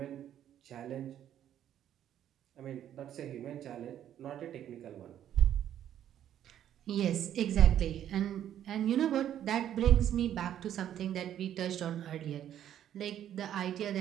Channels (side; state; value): left; quieter; 10.7 dB